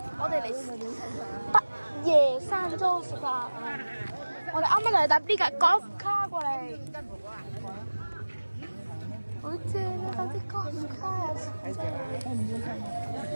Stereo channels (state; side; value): inverted; both; correlation -1.00